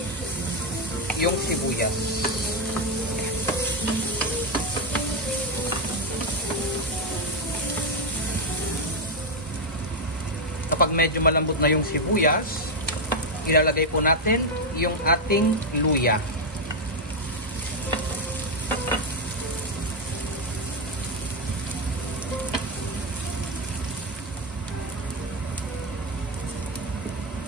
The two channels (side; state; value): both; normal; correlation 0.03